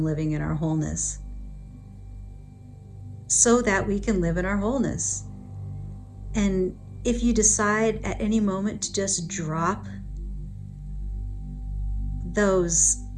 living in our wholeness so that we can live in our wholeness. And if you decide at any moment to just drop those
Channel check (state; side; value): identical; both; correlation 1.00